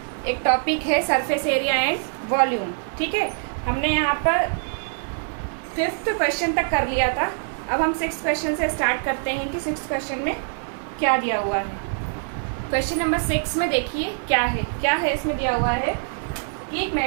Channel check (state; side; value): silent; left; digital silence